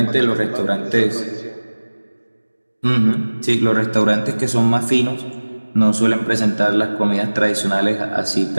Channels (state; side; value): inverted; both; correlation -1.00